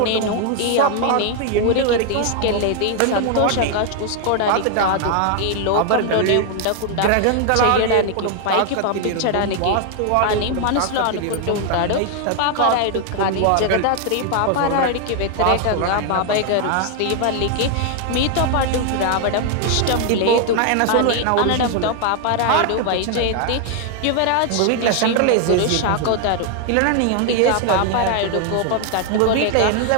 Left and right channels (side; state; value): both; different; correlation 0.00